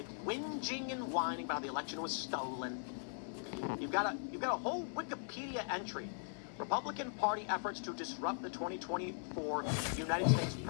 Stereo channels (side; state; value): right; silent; 51 dB below the other